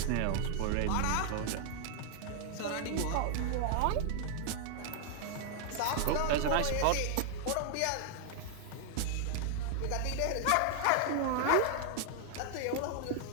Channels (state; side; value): different; both; correlation 0.00